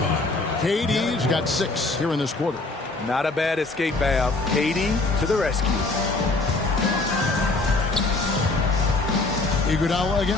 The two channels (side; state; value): right; quieter; 3.3 dB